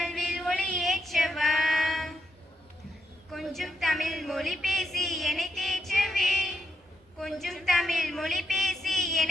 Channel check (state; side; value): normal; both; correlation 0.81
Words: ஒளியேற்றவா. கொஞ்சம் தமிழ் மொழி பேசி என்னை தேற்றவே. கொஞ்சம் தமிழ் மொழி பேசி